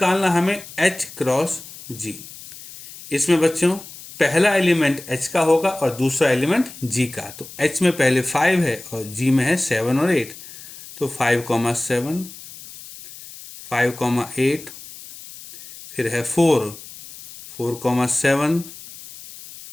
हमें H क्रॉस G। इसमें बच्चों पहला एलिमेंट H का होगा और दूसरा एलिमेंट G का, तो H में पहले 5 है और G में है 7 और 8, तो 5, 7, 5, 8, फिर है 4, 7,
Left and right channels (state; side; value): noise; left; hiss, 16 dB below the sound